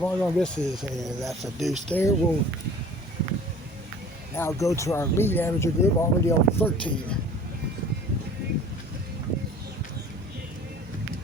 misses, and that's a deuce there. We'll now go to our lead amateur group, already on 13.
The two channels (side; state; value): both; normal; correlation 0.46